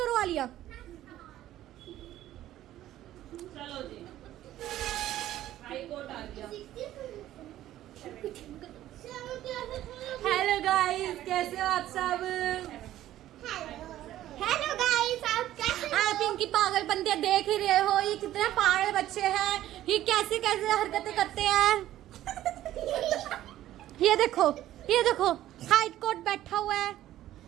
आलिया। चलो जी, हाई कोर्ट आ गया। हेलो गाइस, कैसे हो आप सब? हेलो गाइस, आप कैसे आप इनकी पागल बंदियां देख ही रहे हो, ये कितने पागल बच्चे हैं, ये कैसे कैसे हरकतें करते हैं। ये देखो हाइट कोट बैठा हुआ है।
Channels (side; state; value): left; quieter; 13.5 dB